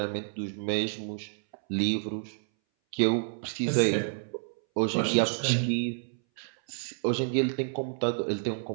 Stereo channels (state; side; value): silent; left; 58 dB below the other